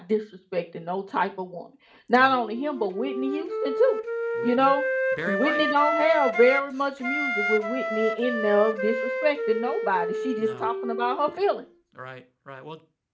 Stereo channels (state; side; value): identical; both; correlation 1.00